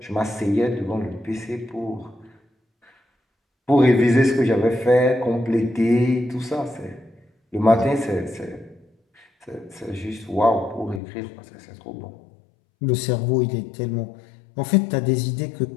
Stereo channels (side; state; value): right; drops out; at 11.0 s